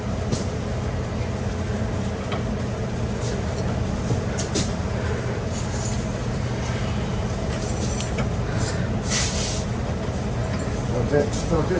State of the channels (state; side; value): identical; both; correlation 1.00